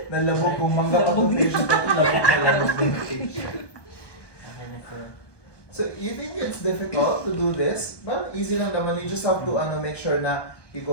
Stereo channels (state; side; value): late; right; 1.2 ms